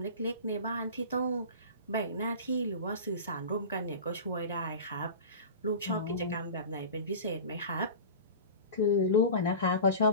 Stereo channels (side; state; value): both; inverted; correlation -0.33